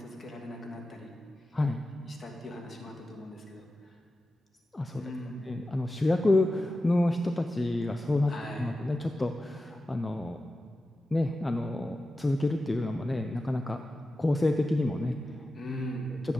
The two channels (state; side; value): normal; both; correlation 0.93